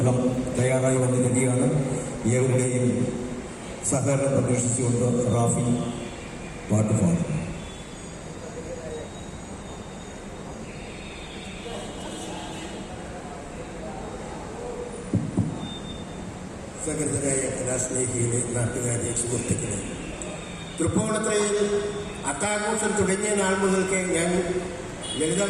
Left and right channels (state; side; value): identical; both; correlation 1.00